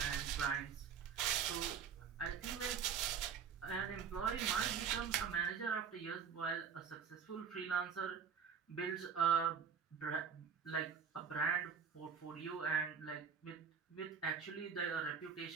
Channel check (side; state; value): left; quieter; 6.9 dB